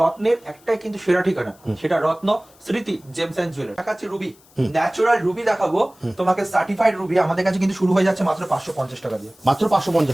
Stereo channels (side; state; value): left; noise; hiss, 28 dB below the sound